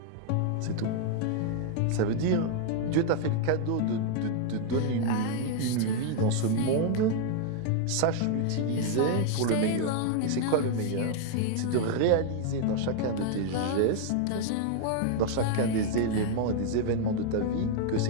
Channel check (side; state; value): both; different; correlation 0.00